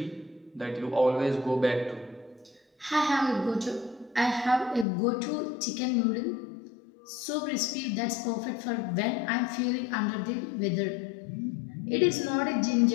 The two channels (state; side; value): drops out; right; at 4.9 s